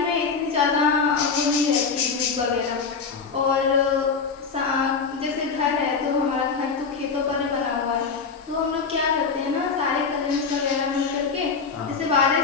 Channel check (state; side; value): quieter; right; 5.3 dB